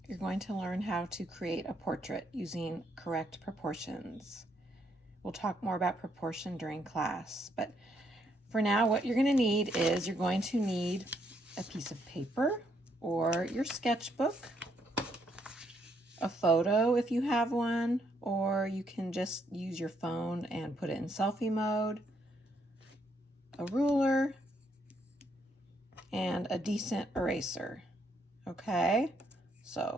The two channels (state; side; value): normal; both; correlation 0.74